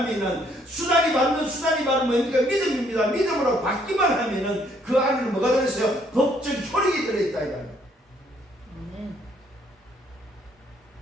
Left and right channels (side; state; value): both; normal; correlation 0.67